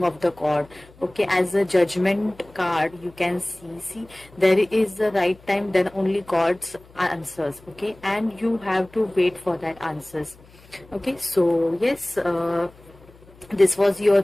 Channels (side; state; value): left; noise; hum, 25 dB below the sound